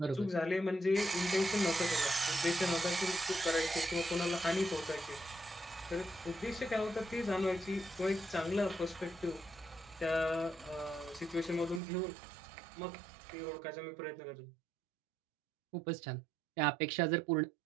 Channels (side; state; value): left; drops out; at 11.8 s